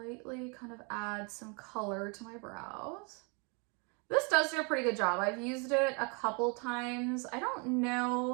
kind of add some color to my brows. This does do a pretty good job. I've used it a couple times. I don't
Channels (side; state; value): left; quieter; 33.7 dB